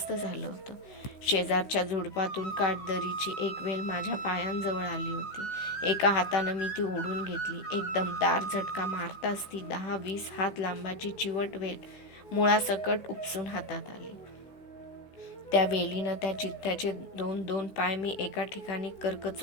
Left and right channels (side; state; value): right; late; 16 ms